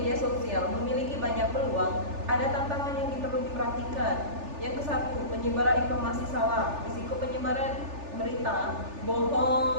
sosial memiliki banyak peluang, ada tantangan yang perlu diperhatikan. Yang ke-1, penyebaran informasi salah. Risiko penyebaran berita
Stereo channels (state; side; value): late; left; 3.4 ms